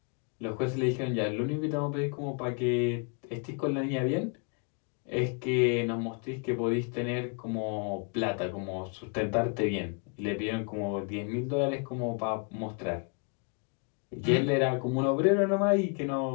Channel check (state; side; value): quieter; right; 36.6 dB